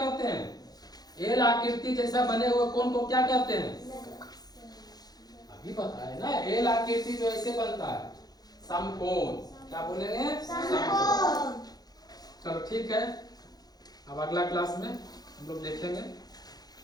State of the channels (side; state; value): right; late; 0.19 ms